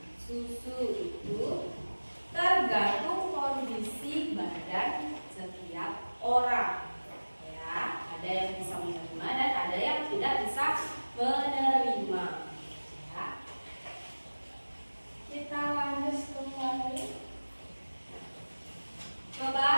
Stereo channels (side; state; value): both; inverted; correlation -1.00